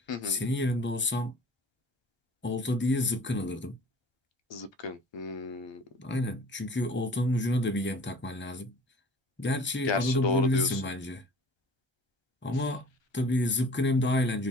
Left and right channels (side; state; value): both; normal; correlation 0.47